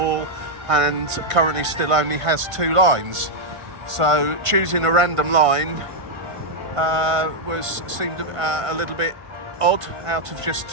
and currently still only has 2 lines. So choosing a random line seemed a little bit odd out of just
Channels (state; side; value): late; left; 1.5 ms